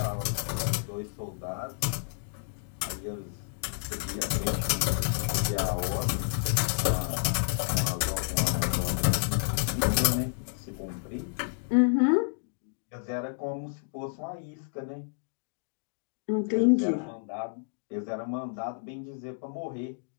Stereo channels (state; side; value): silent; right; digital silence